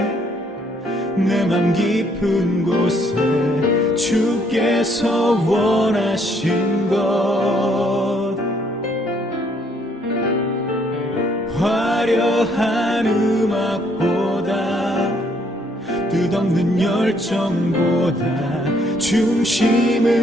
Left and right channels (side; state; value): both; normal; correlation 0.68